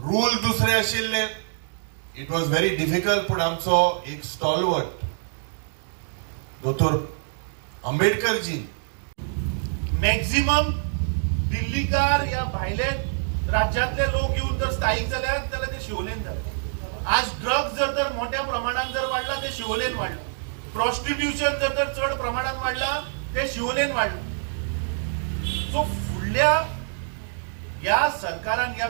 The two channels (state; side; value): silent; left; digital silence